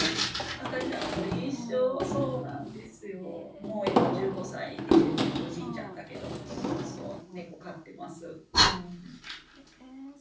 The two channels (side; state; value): both; identical; correlation 1.00